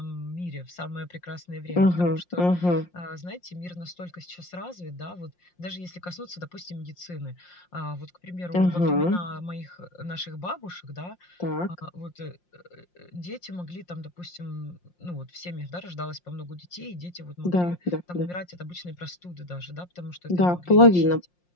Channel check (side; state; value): right; late; 5.6 ms